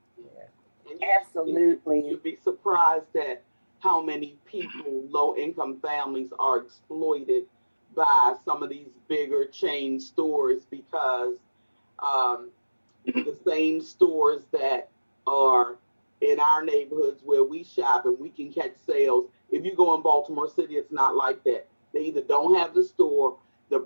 absolutely. You'd be surprised at how many people, low income families, are exploited by some of these bigger chain stores, because the same stores that are in our neighborhoods where we shop and we can catch sales, if you go in Baltimore City, it's not like that. They either don't have the store, the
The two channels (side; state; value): both; inverted; correlation -1.00